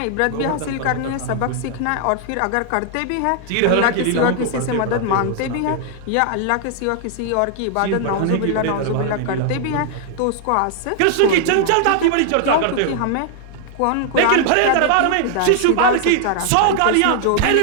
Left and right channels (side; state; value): both; different; correlation 0.00